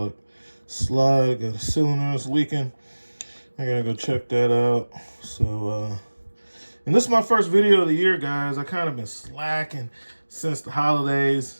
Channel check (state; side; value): inverted; both; correlation -1.00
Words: slide. Got a cylinder that's leaking. I gotta go check that out. So and this is my first video of the year, guys. I kind of been slacking since the